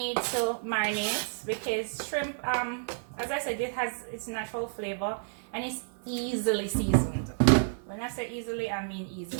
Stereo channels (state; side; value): silent; left; 57 dB below the other